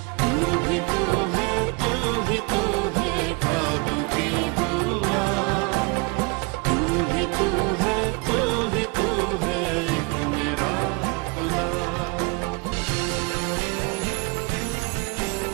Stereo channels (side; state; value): left; quieter; 29.3 dB